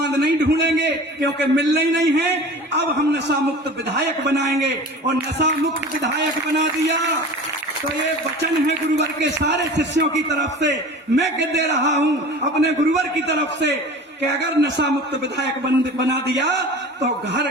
नहीं ढूंढेंगे, क्योंकि मिलना ही नहीं है। अब हम नशा मुक्त विधायक बनाएंगे और नशा मुक्त विधायक बना दिया तो ये वचन है गुरुवर के सारे शिष्यों की तरफ से, मैं कह दे रहा हूं अपने गुरुवर की तरफ से कि अगर नशा मुक्त विधायक बना दिया तो घर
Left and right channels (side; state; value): both; normal; correlation 0.39